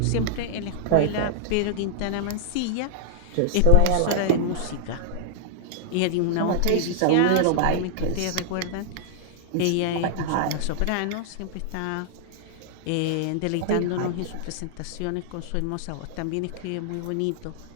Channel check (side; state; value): both; different; correlation -0.01